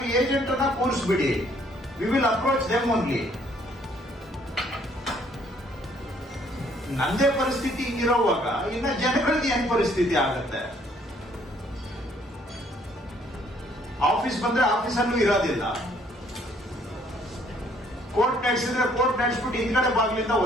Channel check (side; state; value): both; normal; correlation 0.63